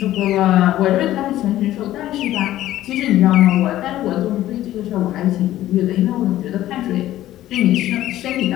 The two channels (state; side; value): quieter; right; 14.0 dB